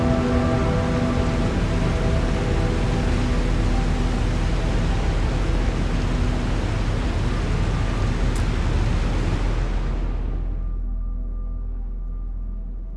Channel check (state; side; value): identical; both; correlation 1.00